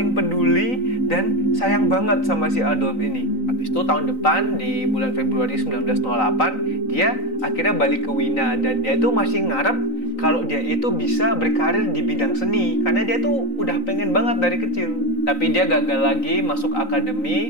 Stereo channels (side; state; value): right; late; 3.9 ms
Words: peduli dan sayang banget sama si Adolf ini. Habis itu tahun depan di bulan Februari 1908 dia akhirnya balik ke Wina, dan dia itu masih ngarep kalau dia itu bisa berkarir di bidang seni karena dia tuh udah pengen banget dari kecil. Tapi dia gagal lagi masuk